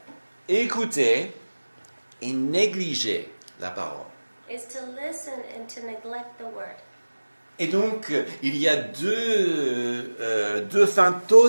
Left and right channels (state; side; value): inverted; both; correlation -1.00